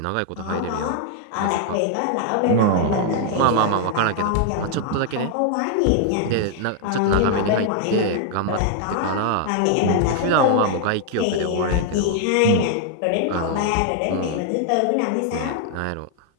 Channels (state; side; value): different; both; correlation 0.00